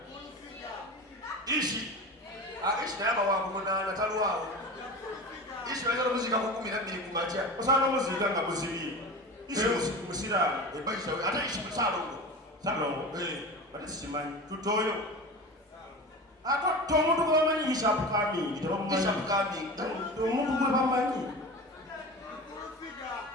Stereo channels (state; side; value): normal; both; correlation 0.31